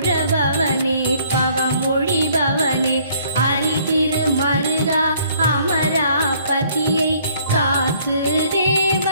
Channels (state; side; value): inverted; both; correlation -0.61